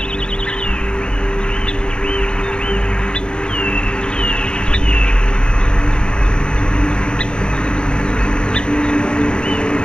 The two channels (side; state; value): right; late; 0.050 ms